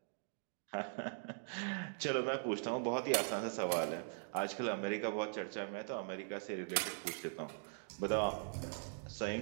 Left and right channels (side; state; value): left; silent; digital silence